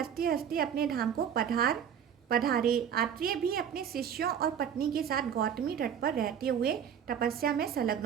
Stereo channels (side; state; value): left; quieter; 8.5 dB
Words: हंसते अपने धाम को पधारे। आत्रेय भी अपने शिष्यों और पत्नी के साथ गौतमी तट पर रहते हुए तपस्या में संलग्न